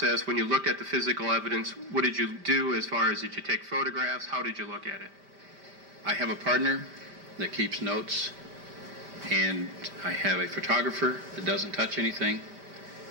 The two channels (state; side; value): late; left; 5.1 ms